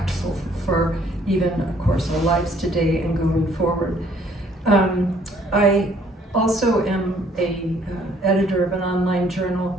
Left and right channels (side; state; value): both; normal; correlation 0.62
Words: for even, of course, our lives today and going forward. I also am a editor of an online